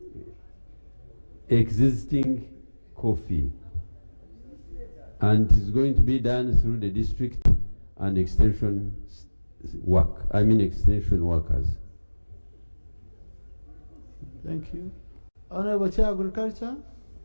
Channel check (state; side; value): inverted; both; correlation -1.00